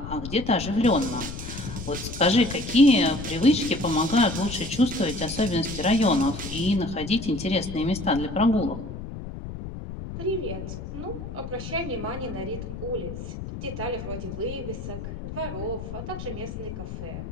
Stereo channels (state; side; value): noise; left; rumble, 9 dB below the sound